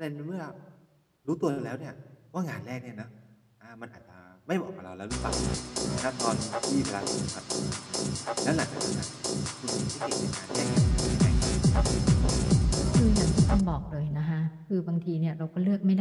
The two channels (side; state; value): both; identical; correlation 1.00